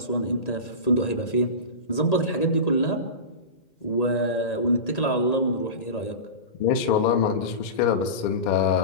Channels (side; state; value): right; late; 2.1 ms